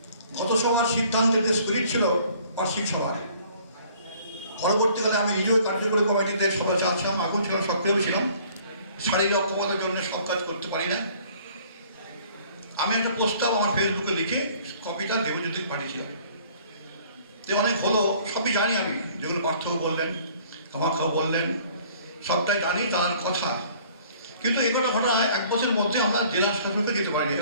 গত সভার সিদ্ধান্তের যে স্পিরিট ছিল বার্ষিক সভায়, পরবর্তীকালে আমি নিজেও কার্যকরী কমিটিতে সভা চাচ্ছিলাম, এখন ছিলাম, সক্রিয় ছিলাম। শারীরিক অক্ষমতার জন্য সব কাজ করতে পারি না। আমি একটা প্রস্তাব আমার ফেসবুকে লিখে কপিটা দেবজ্যোতিকে পাঠিয়েছিলাম। যে অনেক হলো, সবই জানি আমি, যেগুলো পার্থক্য বললেন, আমাকেও বললেন, সবটাই জানি, জানার কথা। কিন্তু এই কটা ঘটনা 1 বছরের মধ্যে আমরা জেলা শাসনকে যেতে পারিনি,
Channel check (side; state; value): both; inverted; correlation -0.55